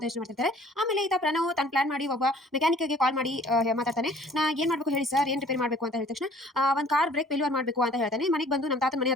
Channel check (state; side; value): normal; both; correlation 0.53